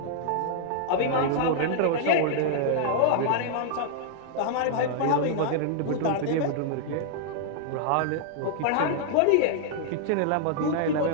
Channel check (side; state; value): both; different; correlation -0.01